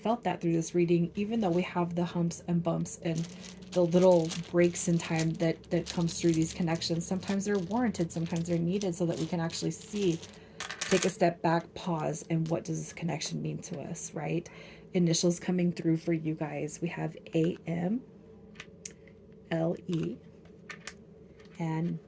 that through this reading, even though we have the humps and bumps and the little breaks in time that comes through these connections. Sometimes they're warranted, sometimes they're needed so that we can actually see, take a step back, pause, and what does this connection mean to us, right? Initials coming through for you guys. We have AM, LE, and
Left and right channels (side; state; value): both; identical; correlation 1.00